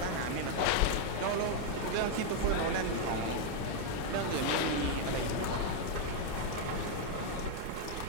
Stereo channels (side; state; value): both; different; correlation 0.00